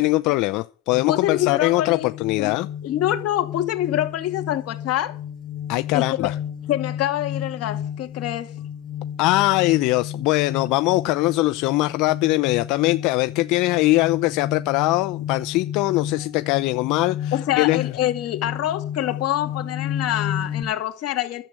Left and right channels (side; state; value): right; quieter; 15.2 dB